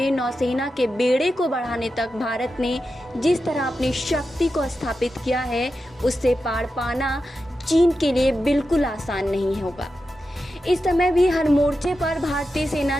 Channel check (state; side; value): normal; both; correlation 0.90